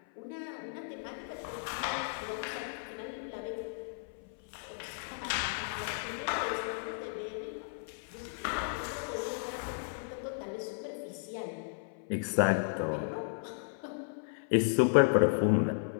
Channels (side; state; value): right; silent; 55 dB below the other